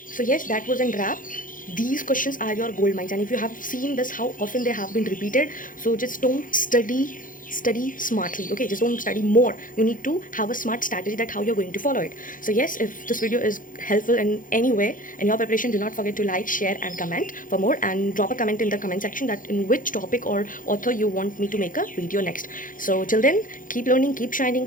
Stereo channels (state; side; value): late; right; 0.39 ms